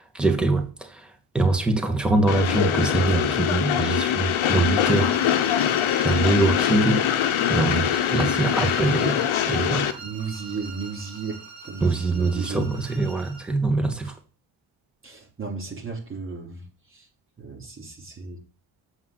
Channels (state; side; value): normal; both; correlation 0.43